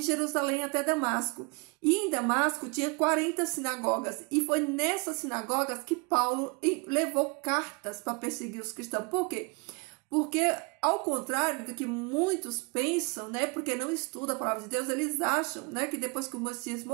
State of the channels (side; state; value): left; quieter; 31.5 dB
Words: Jerusalém até Damasco. E em Damasco tinha 40 sinagogas, e foi nessas sinagogas que Paulo levou cartas para perseguir os cristãos. Por quê? Porque, ao contrário do que muitos pensam, né, porque não estudam a palavra de Deus, eles acham, né, que depois que o Messias